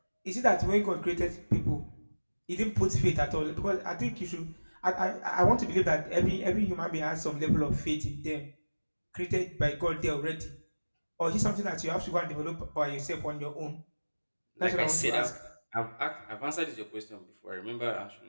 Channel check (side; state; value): both; inverted; correlation -1.00